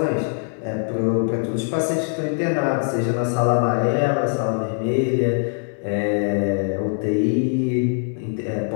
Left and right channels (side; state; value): right; silent; 64 dB below the other